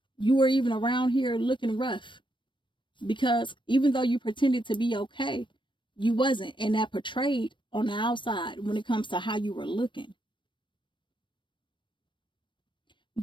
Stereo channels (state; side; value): late; right; 0.23 ms